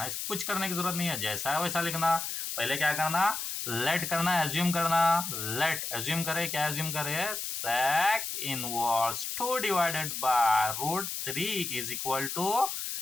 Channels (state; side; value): noise; left; hiss, 4 dB below the sound